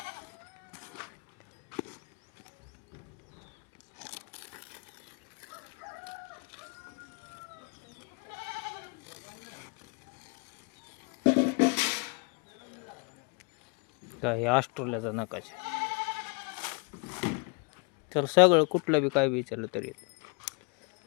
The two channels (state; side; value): quieter; right; 32.7 dB